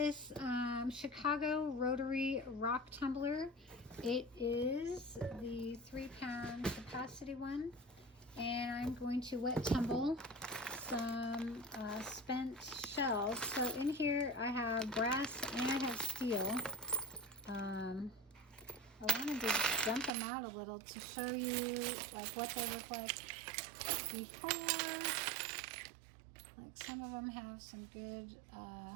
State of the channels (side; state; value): left; drops out; at 20.1 s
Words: Chicago Rotary Rock Tumbler. It is the 3-pound capacity one, and I'm going to wet tumble some spent shells. So in here I have brass and I have steel. I wanted to dump them out a little to show you like what they look like before. Like some of them have some good